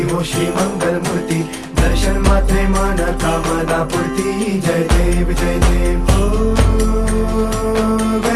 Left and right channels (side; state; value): both; identical; correlation 1.00